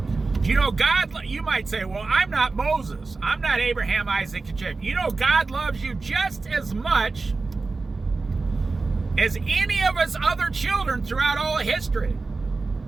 You know, God, you might say, well, I'm not Moses. I'm not Abraham, Isaac, and Jacob. You know, God loves you just as much as any of his other children throughout all of history.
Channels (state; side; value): quieter; left; 3.9 dB